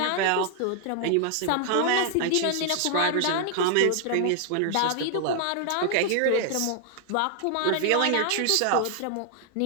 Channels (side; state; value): both; different; correlation 0.00